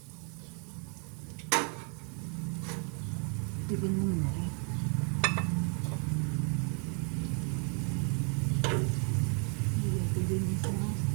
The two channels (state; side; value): quieter; left; 38.8 dB